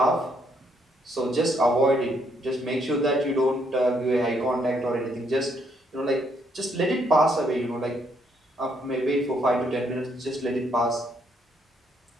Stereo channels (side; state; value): both; normal; correlation 0.72